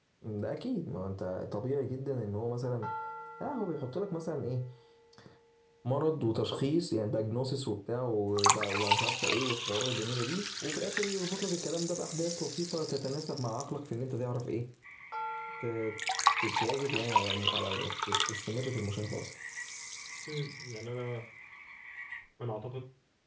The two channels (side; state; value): both; identical; correlation 1.00